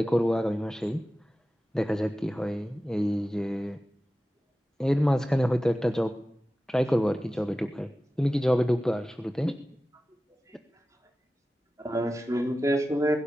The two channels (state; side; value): normal; both; correlation 0.95